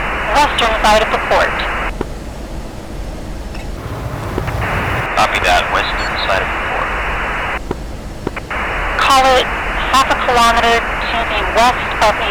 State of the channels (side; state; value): both; identical; correlation 1.00